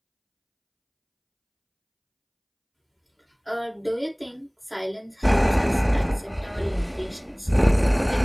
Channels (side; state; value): both; identical; correlation 1.00